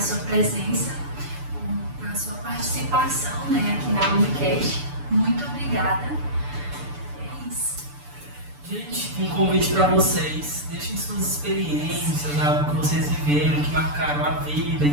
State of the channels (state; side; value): late; left; 6.9 ms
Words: sua presença, a sua participação, né, aqui na Unicast. Muito obrigada. É isso. Gente, um convite para vocês. Deixem suas experiências, algo que vocês viveram, que marcaram a vida em